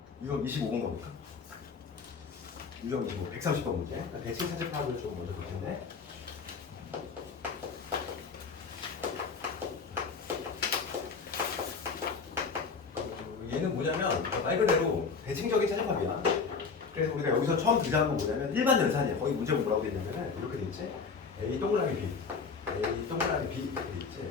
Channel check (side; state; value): right; quieter; 5.2 dB